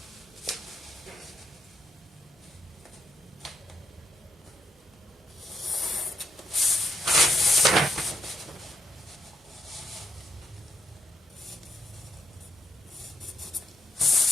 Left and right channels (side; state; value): both; normal; correlation 0.82